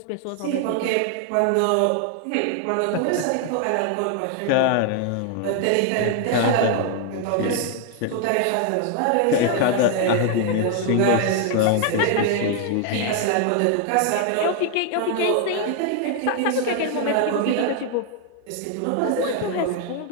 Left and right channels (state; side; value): different; both; correlation 0.00